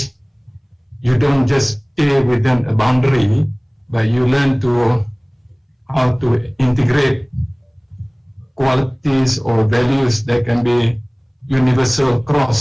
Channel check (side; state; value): both; identical; correlation 1.00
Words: you don't just stay within a boundary, but you learn how to integrate qualities or values that can be universal